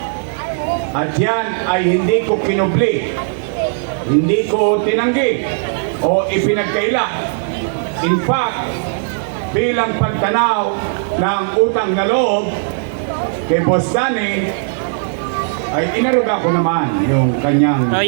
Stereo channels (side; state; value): left; silent; 57 dB below the other